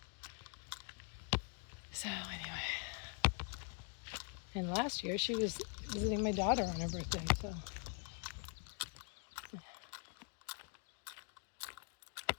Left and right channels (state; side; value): quieter; right; 36.8 dB